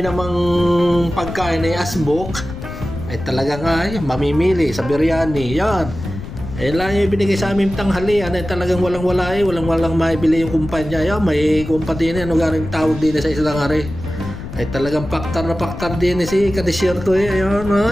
namang pagkain ay asbok ay talaga nga mamimili sa biryani yan. Eh lang yung binigay sa aming tanghalian ay talagang walang-wala walang-walang maibili yung kumpanya. Yan, may kumpanya ano garing tawag din sa isang hari. Ay talagang paktar na paktar din si kadesierto ayun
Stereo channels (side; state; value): left; noise; rumble, 11 dB below the sound